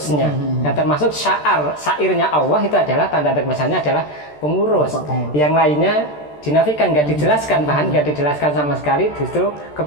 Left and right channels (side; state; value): right; late; 13 ms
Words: Dan termasuk syairnya Allah itu adalah tanda misalnya adalah pengurus. Yang lainnya dinafikan, nggak dijelaskan, bahkan nggak dijelaskan sama sekali justru